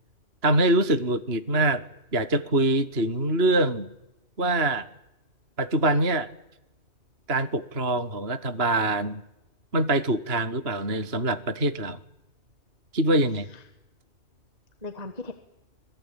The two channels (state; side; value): late; left; 2.9 ms